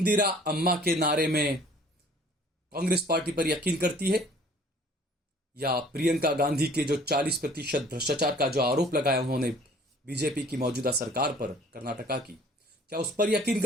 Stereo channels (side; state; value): both; normal; correlation 0.53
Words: अम्मा के नारे में कांग्रेस पार्टी पर यकीन करती है, या प्रियंका गांधी के जो 40% भ्रष्टाचार का जो आरोप लगाया उन्होंने बीजेपी की मौजूदा सरकार पर, कर्नाटका की, क्या उस पर यकीन